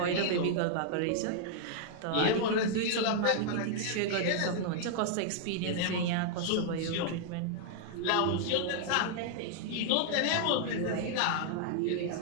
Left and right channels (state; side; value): different; both; correlation -0.01